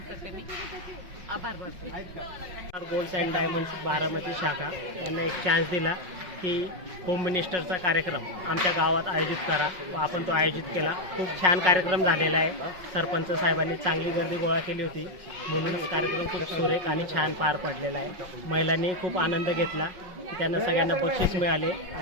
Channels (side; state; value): left; late; 5.4 ms